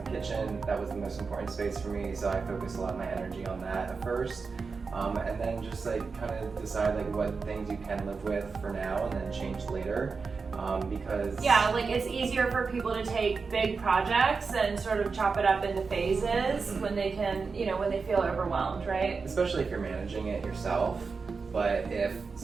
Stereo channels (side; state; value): left; quieter; 4.8 dB